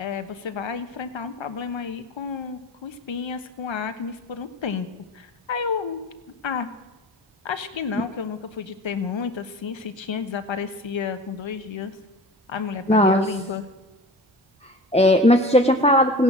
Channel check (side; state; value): both; normal; correlation 0.38